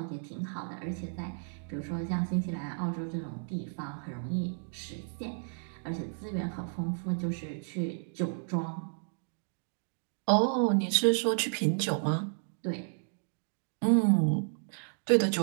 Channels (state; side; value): silent; left; digital silence